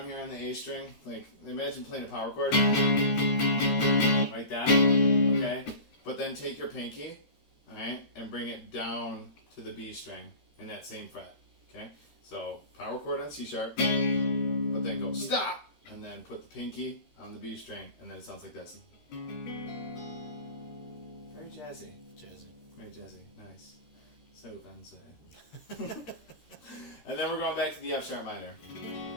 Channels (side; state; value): right; late; 13 ms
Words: here on the A string. Like, imagine playing a power chord. Like that. Okay? But then take your pinky, alright, and bring it down to the B string in that same fret. Okay? So, power chord on C sharp, but then go stop, and then put the pinky on the B string, and then it sounds like this. Very jazzy. Jazzy. Very jazzy. Nice. So fancy. And then we're going back to the F sharp minor.